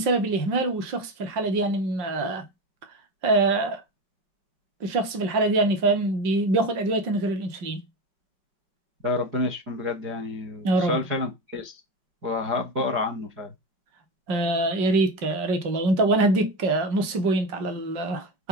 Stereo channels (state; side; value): late; left; 5.6 ms